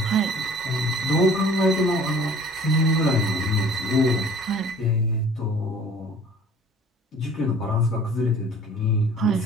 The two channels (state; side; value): normal; both; correlation 0.49